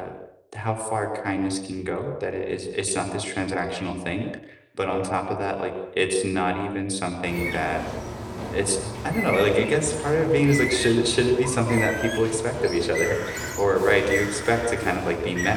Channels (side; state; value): both; identical; correlation 1.00